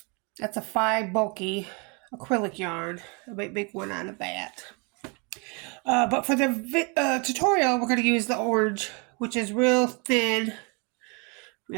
that's a 5 bulky acrylic yarn. I might make one out of that. But for the tutorial, we're going to use the orange, which is real thin,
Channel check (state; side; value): quieter; left; 32.4 dB